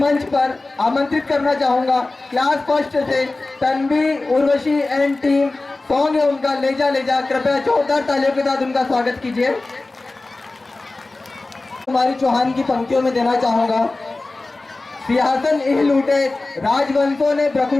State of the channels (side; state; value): right; quieter; 3.2 dB